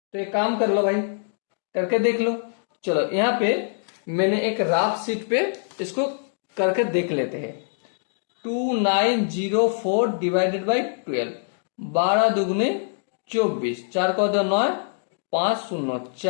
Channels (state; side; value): silent; right; digital silence